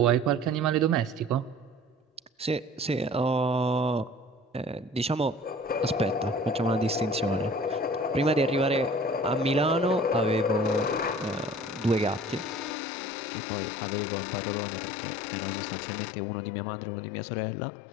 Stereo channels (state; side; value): drops out; right; at 12.8 s